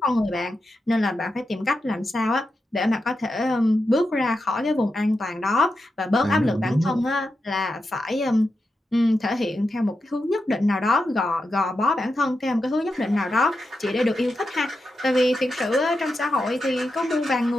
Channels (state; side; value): normal; both; correlation 0.88